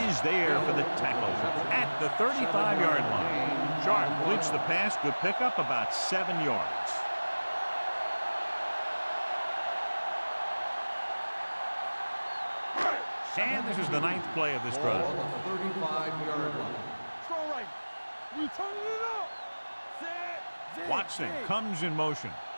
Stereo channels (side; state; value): both; inverted; correlation -1.00